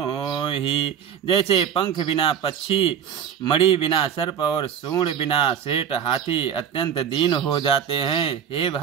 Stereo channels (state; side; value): quieter; left; 8.6 dB